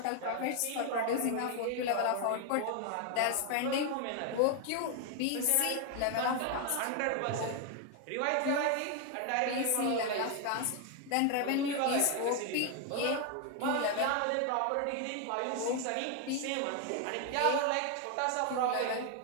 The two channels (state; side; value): different; both; correlation 0.01